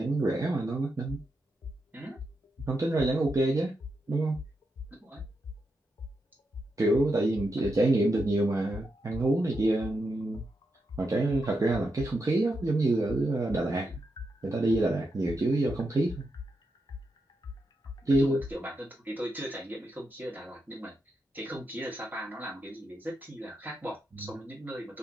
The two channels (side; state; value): both; normal; correlation 0.85